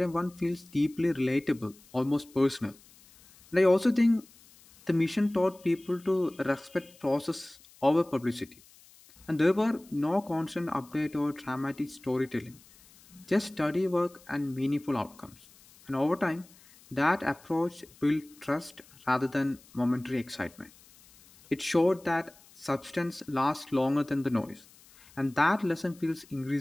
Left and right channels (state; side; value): noise; left; hiss, 25 dB below the sound